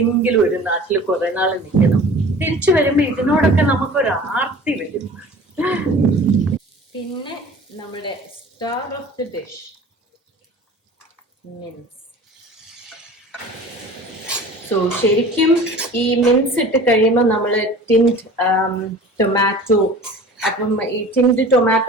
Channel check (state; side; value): normal; both; correlation 0.42